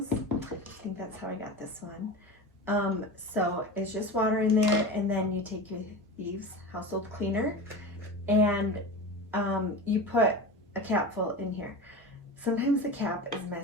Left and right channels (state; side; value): normal; both; correlation 0.28